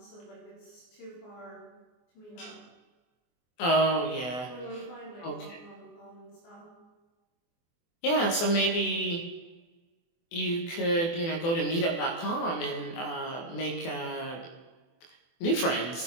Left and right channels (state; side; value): late; right; 24 ms